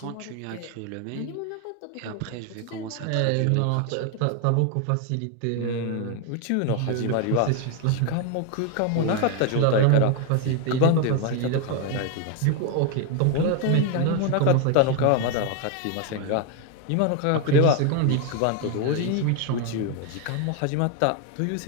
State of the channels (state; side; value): different; both; correlation 0.01